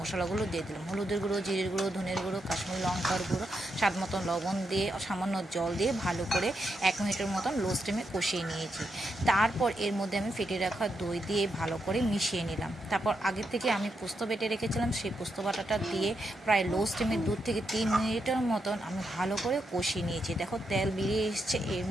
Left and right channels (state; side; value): normal; both; correlation 0.83